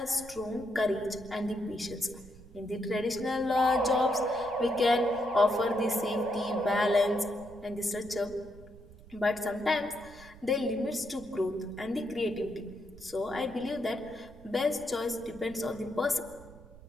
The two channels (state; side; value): noise; right; rumble, 20 dB below the sound